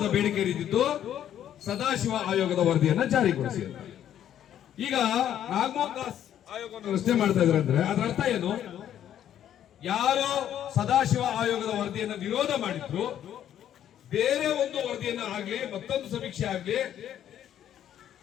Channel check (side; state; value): right; quieter; 10.6 dB